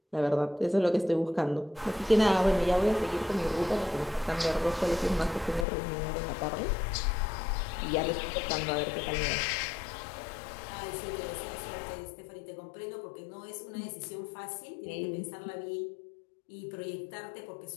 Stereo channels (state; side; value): drops out; right; at 5.7 s